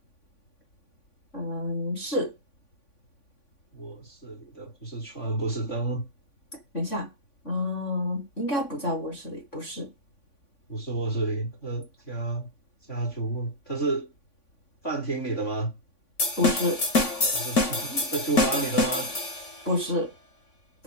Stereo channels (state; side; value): late; right; 3.5 ms